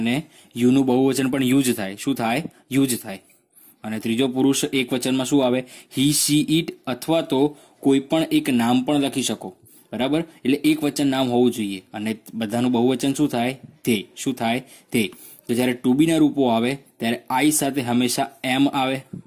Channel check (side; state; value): both; identical; correlation 1.00